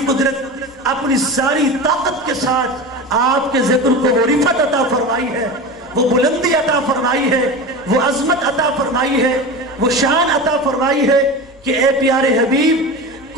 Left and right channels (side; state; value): left; noise; hum, 29 dB below the sound